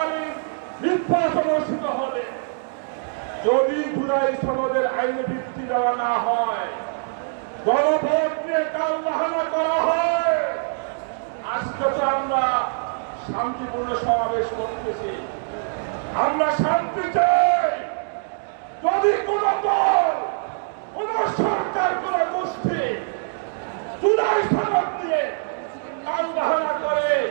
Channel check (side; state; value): left; silent; digital silence